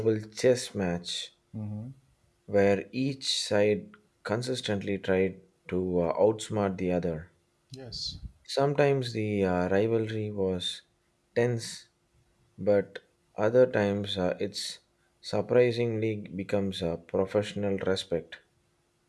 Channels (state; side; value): identical; both; correlation 1.00